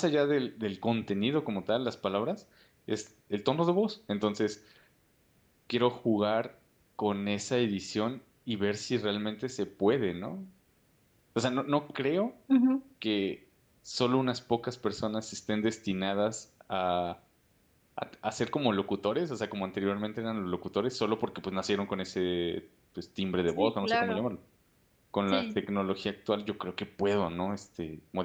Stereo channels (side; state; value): both; identical; correlation 1.00